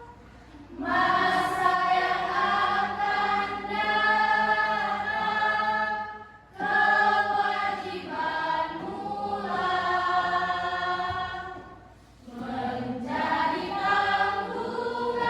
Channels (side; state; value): both; identical; correlation 1.00